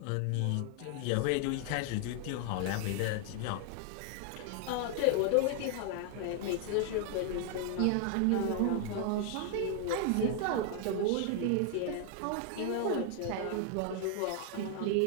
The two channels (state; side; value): different; both; correlation 0.00